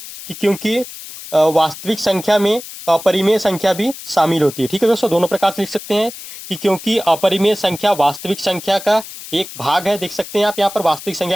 कि क्योंकि वास्तविक संख्या में अपरिमेय संख्या भी शामिल होती है। ठीक है दोस्तों, दोनों प्रकार से लिख सकते हैं कि क्योंकि अपरिमेय संख्या वास्तविक संख्या का एक भाग है। देख सकते हैं आप यहाँ पर वास्तविक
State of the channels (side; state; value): left; noise; hiss, 13 dB below the sound